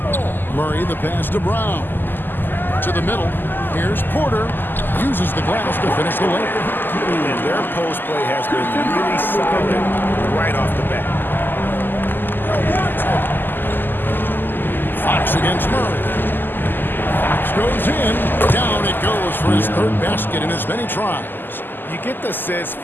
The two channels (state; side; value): late; right; 0.092 ms